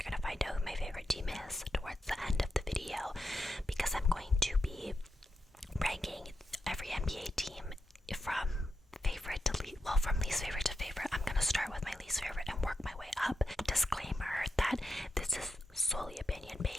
going to find out who my favorite team is towards the end of the video, because I'm going to be ranking every NBA team from favorite to least, well, from least favorite to favorite. I'm going to start with my least favorite and work my way up. Disclaimer that this is solely opinion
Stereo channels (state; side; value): normal; both; correlation 0.87